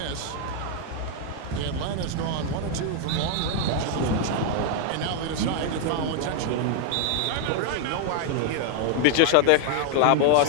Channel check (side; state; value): both; different; correlation 0.00